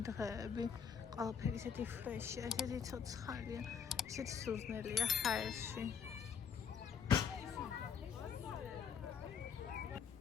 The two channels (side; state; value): right; quieter; 7.1 dB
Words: დღეები. ყველაფერი ისეთი ფრეშია, ისეთი ცოცხალია, ისეთი სუზნელია ჰაერში.